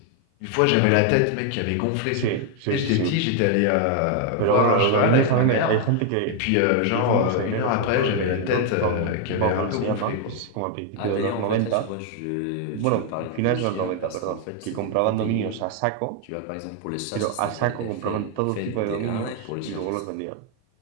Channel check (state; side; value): different; both; correlation 0.00